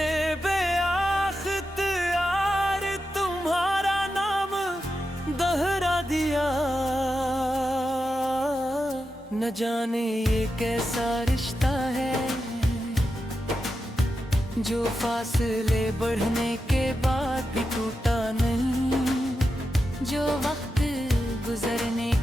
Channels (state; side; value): normal; both; correlation 0.89